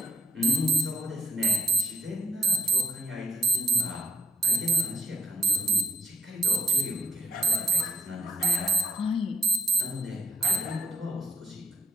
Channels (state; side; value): normal; both; correlation 0.60